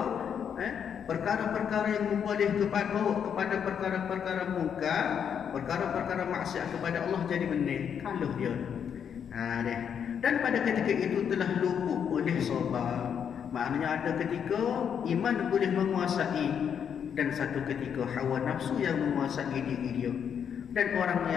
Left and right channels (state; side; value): quieter; right; 7.9 dB